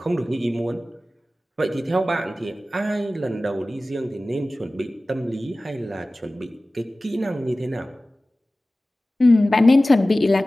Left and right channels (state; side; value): normal; both; correlation 0.97